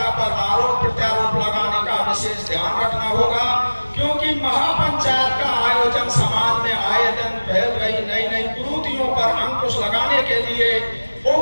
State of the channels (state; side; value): inverted; both; correlation -1.00